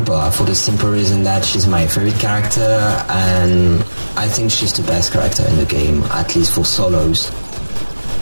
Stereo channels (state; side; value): inverted; both; correlation -1.00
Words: for the simple reason that she's my favorite character, and I think she's the best character in the game, at least for solos.